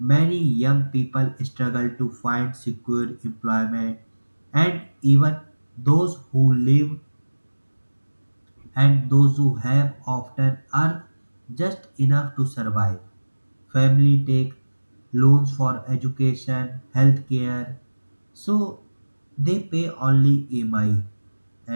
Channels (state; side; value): inverted; both; correlation -1.00